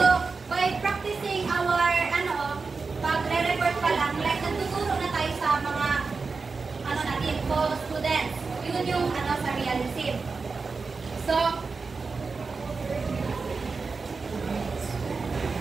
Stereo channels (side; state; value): left; quieter; 4.5 dB